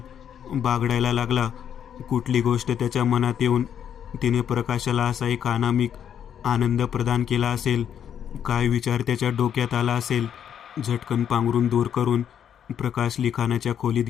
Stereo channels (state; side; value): quieter; right; 8.9 dB